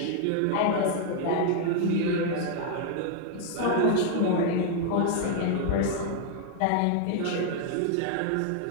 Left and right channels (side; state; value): both; different; correlation 0.00